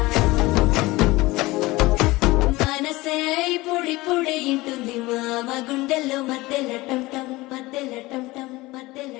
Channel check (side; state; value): right; quieter; 20.5 dB